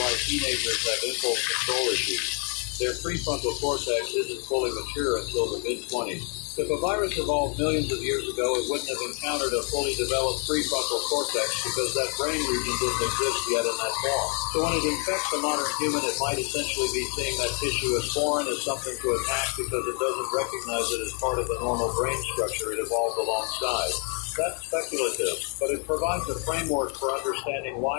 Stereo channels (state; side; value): quieter; right; 38.0 dB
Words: teenagers have impulse control issues. Their prefrontal cortex isn't fully mature until the mid-20s. If a virus evolved millions of years ago, it wouldn't have encountered a fully developed prefrontal cortex because that brain region didn't exist yet in that form. So when it infects a modern human, it might essentially be seeing that tissue as foreign, as something to attack because it doesn't recognize it as part of the normal brain structure it evolved alongside. That's speculative, but it provides a framework for understanding